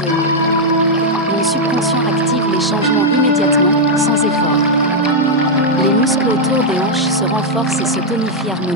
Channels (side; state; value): both; normal; correlation -0.02